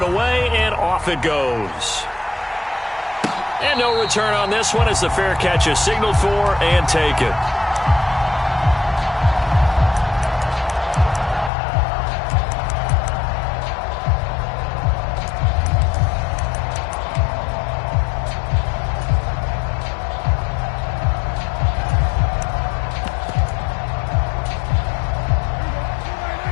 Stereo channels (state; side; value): drops out; right; at 11.5 s